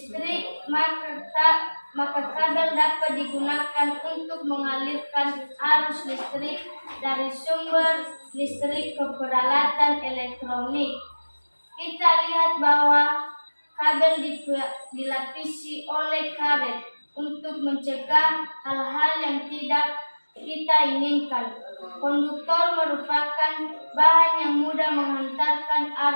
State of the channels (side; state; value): both; inverted; correlation -1.00